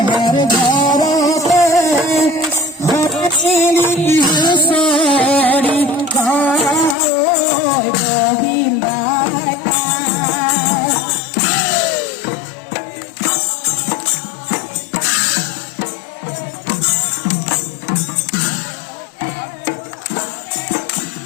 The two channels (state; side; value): drops out; right; at 7.0 s